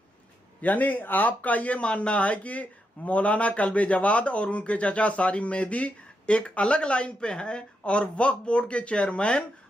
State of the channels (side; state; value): both; normal; correlation 0.83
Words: यानी आपका ये मानना है कि मौलाना कल्बे जवाद और उनके चाचा सारिम मेहदी एक अलग लाइन पे हैं और वक्फ बोर्ड के चेयरमैन